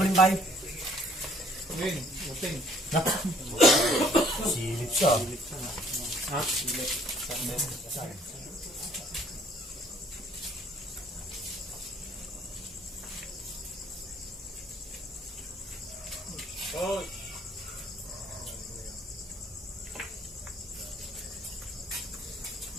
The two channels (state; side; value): normal; both; correlation 0.60